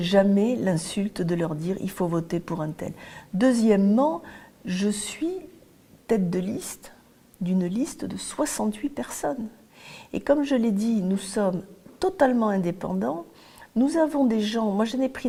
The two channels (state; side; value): identical; both; correlation 1.00